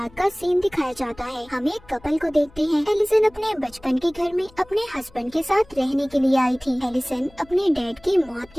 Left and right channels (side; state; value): left; noise; hum, 26 dB below the sound